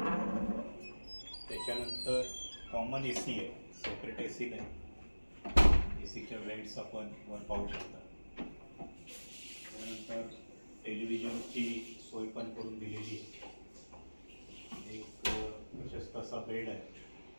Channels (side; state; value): both; inverted; correlation -1.00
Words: त्याच्यानंतर कॉमन AC आहे, सेपरेट AC नाही. ACच्या वेंट्स आपण वर पाहू शकता. त्यानंतर टेलिव्हिजनची सोय पण करून दिलेली आहे. एक प्रशस्त असा बेड आहे.